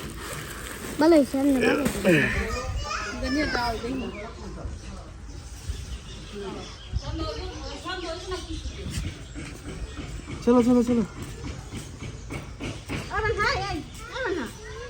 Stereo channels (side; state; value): both; identical; correlation 1.00